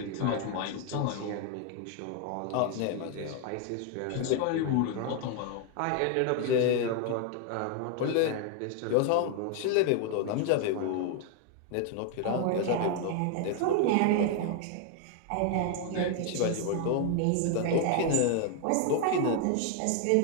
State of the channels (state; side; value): different; both; correlation 0.00